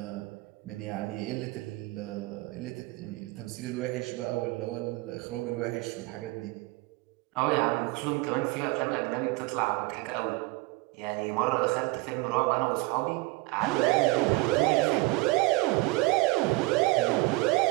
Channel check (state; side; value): quieter; left; 22.3 dB